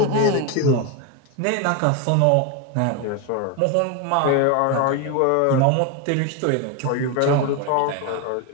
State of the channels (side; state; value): both; different; correlation 0.02